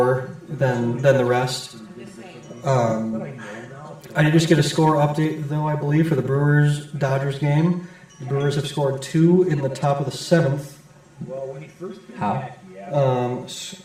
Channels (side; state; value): both; identical; correlation 1.00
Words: than the rest. I did just get a score update, though, I believe, for the Brewers-Dodgers game. The Brewers have scored 2 in the top of the 7th. How?